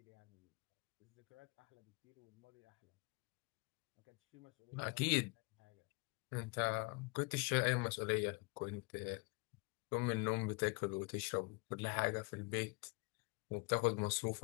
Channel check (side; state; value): right; quieter; 28.9 dB